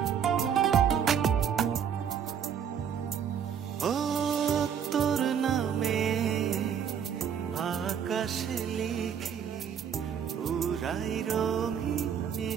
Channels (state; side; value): quieter; left; 8.1 dB